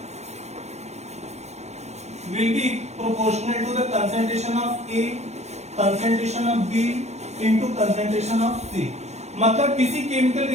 will be proportional to the concentration of A, concentration of B into concentration of C। मतलब किसी केमिकल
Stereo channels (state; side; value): late; left; 0.32 ms